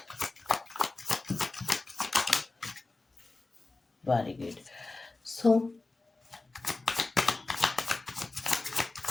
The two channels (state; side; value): quieter; right; 3.3 dB